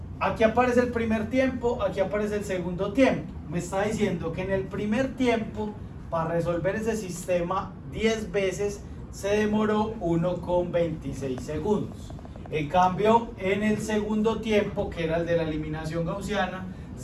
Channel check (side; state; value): both; identical; correlation 1.00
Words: aquí aparece el primer tiempo, aquí aparece el segundo tiempo. Me está diciendo que en el primer tiempo, para resolver ese sistema 10 veces, se demoró 1,26 segundos. En cambio, en el segundo tiempo, que era el de la eliminación gaussiana,